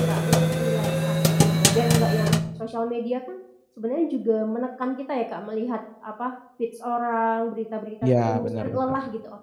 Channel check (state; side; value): identical; both; correlation 1.00